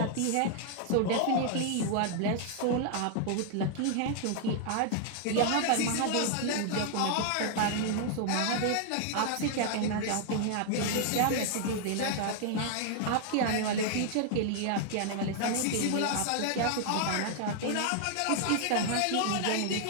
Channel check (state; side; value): different; both; correlation 0.00